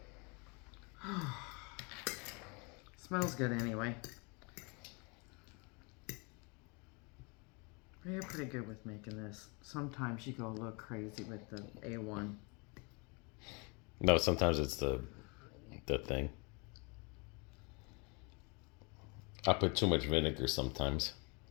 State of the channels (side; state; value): right; quieter; 31.1 dB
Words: Smells good anyway. You're pretty good with making this. Sometimes you go a little crazy with the A1. No, sometimes it's the thing. I put too much vinegar sometimes.